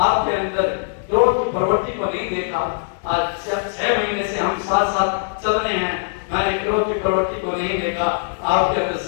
अंदर क्रोध की प्रवृत्ति को नहीं देखा। आज 6 महीने से हम साथ चल रहे हैं, मैंने क्रोध की प्रवृत्ति को नहीं देखा। आपके अंदर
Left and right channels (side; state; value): right; silent; 65 dB below the other